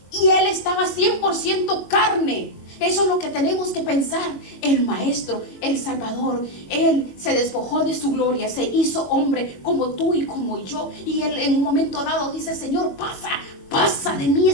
y él estaba 100% carne? Eso es lo que tenemos que pensar. El Maestro, el Salvador, él se despojó de su gloria, se hizo hombre como tú y como yo, y él en un momento dado dice: Señor, pasa de mí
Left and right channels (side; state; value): right; late; 22 ms